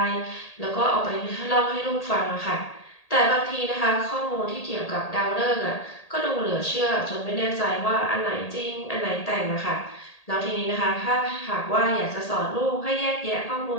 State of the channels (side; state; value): right; late; 1.8 ms